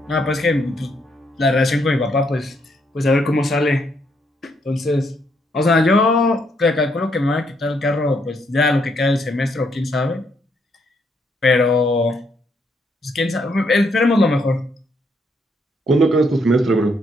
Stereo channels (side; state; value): both; normal; correlation 0.74